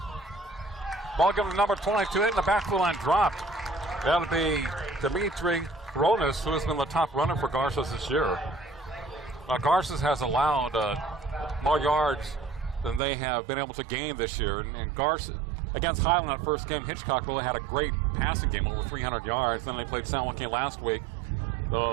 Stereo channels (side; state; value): left; drops out; at 13.0 s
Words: Ball given to number 22, hit in the backfield line, dropped. That'll be Dimitri Ronas, who has been the top runner for Garces this year. Garces has allowed more yards than they have been able to gain this year. And Garces, against Highland that first game, Hitchcock really had a great passing game, over 300 yards. Then they played San Joaquin last week.